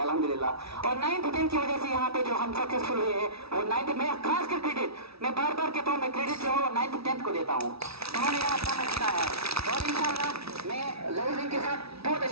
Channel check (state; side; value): late; left; 0.77 ms